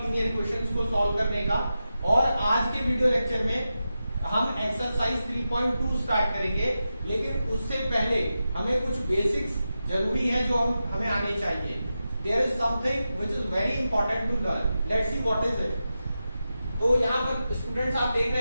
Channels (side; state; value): both; inverted; correlation -0.91